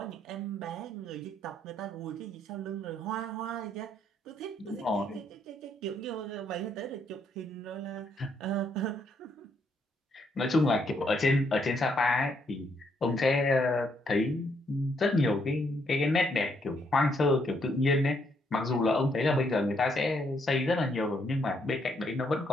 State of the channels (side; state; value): both; normal; correlation 0.73